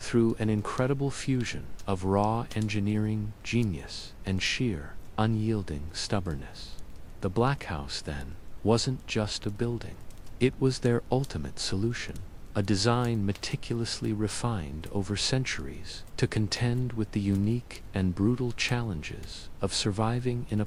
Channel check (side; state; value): both; identical; correlation 1.00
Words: an incredible fusion of raw engineering genius and sheer, unyielding stubbornness. The Black House, then, wasn't just a building. It was their ultimate solution, a design meticulously refined over centuries to contend with the unique and brutal challenges of surviving in a